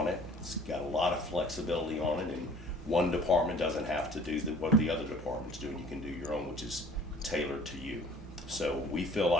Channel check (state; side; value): normal; both; correlation 0.51